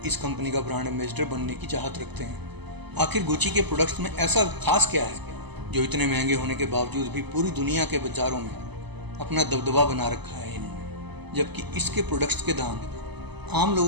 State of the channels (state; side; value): late; left; 0.99 ms